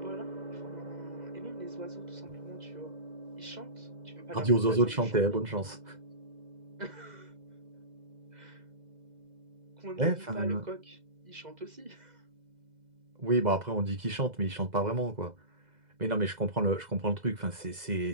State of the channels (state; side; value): late; left; 2.0 ms